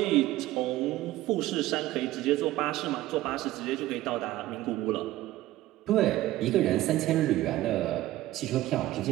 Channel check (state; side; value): quieter; left; 15.8 dB